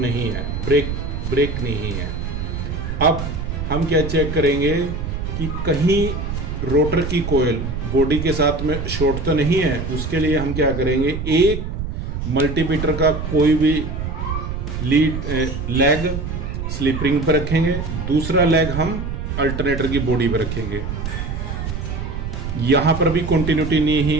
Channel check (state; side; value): noise; right; rumble, 5 dB below the sound